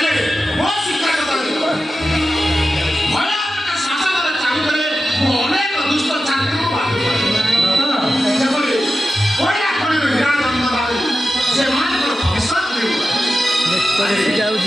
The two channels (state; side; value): normal; both; correlation 0.92